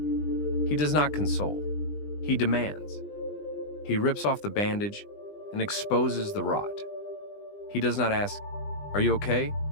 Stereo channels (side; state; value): right; late; 20 ms